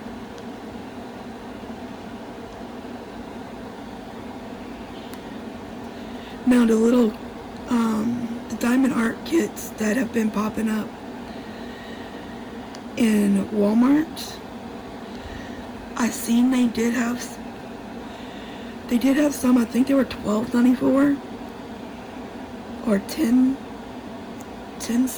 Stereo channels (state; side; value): identical; both; correlation 1.00